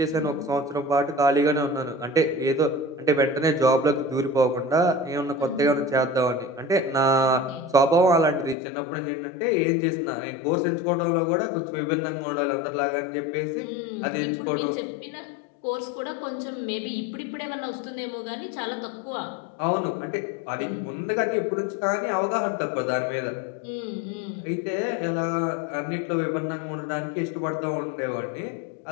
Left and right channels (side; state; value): right; drops out; at 8.6 s